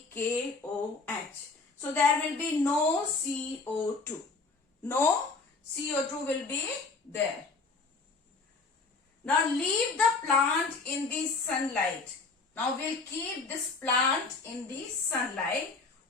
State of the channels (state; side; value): quieter; right; 4.0 dB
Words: KOH. So there will be no CO2. No CO2 will be there. Now leave the plant in the sunlight. Now we'll keep this plant in the sunlight